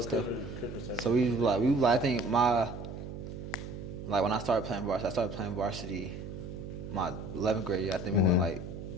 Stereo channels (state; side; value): noise; right; hum, 9 dB below the sound